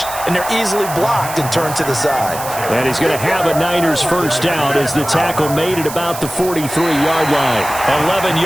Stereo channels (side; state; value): right; noise; hiss, 10 dB below the sound